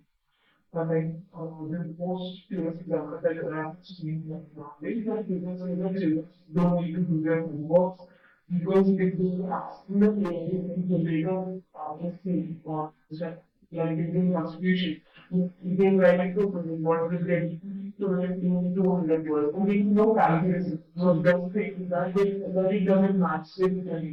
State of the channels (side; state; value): both; identical; correlation 1.00